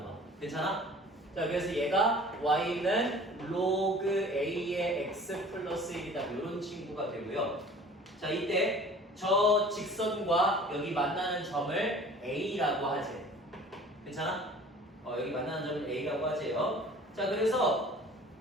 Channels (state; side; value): normal; both; correlation 0.46